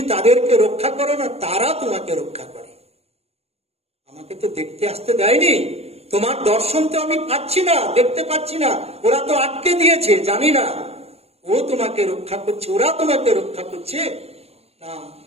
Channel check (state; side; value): late; left; 0.30 ms